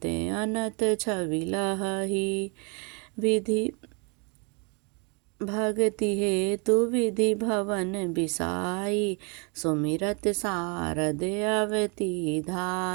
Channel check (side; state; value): left; quieter; 33.2 dB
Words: अनत छवि लहही। विधि भगति हेतु विधि भवन बिसाई, सुमिरत सारद अवति